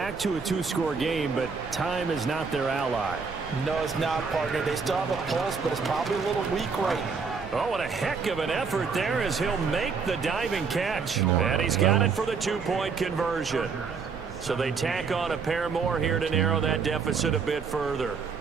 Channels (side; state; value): left; quieter; 5.3 dB